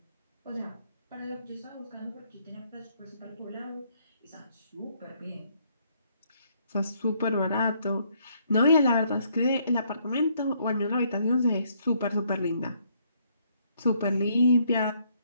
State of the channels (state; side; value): inverted; both; correlation -0.69